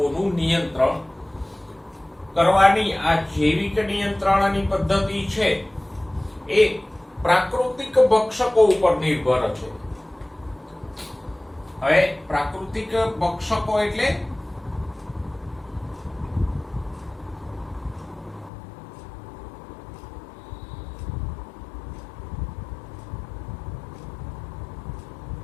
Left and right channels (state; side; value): drops out; right; at 18.5 s